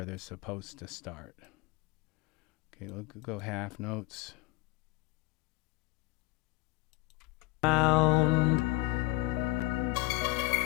they're supposed to start. Okay, we'll go half notes. Round.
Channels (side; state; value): right; quieter; 21.6 dB